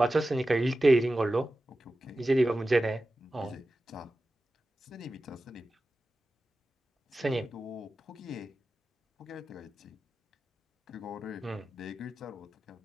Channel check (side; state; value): both; normal; correlation 0.94